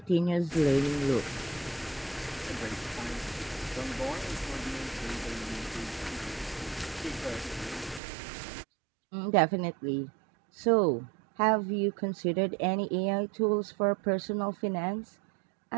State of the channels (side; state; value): left; drops out; at 8.0 s